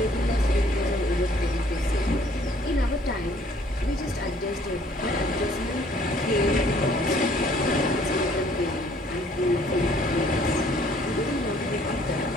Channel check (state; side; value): normal; both; correlation 0.60